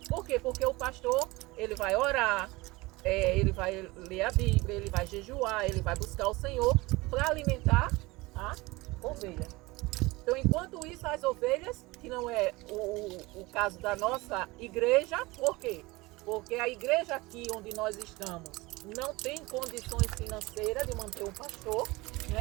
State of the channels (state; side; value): quieter; left; 22.2 dB